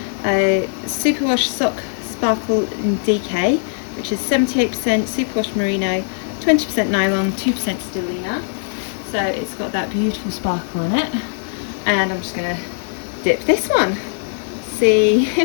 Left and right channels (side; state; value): right; silent; digital silence